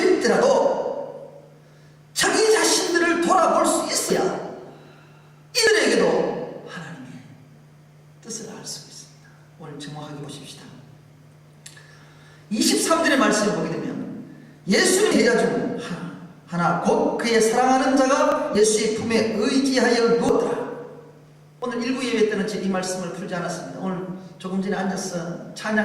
자기 자신들을 돌아볼 수 있어야 이들에게도 하나님의 뜻을 알 수 있습니다. 오늘 정확하게 보십시다. 23절의 말씀을 보게 되면 예수님 제자 중 하나 곧 그의 사랑하는 자가 예수의 품에 의지하여 누웠더라. 오늘 일부 예배 때는 이 말씀을 풀지 않았습니다. 오늘 조금 전에 앉아서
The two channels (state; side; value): identical; both; correlation 1.00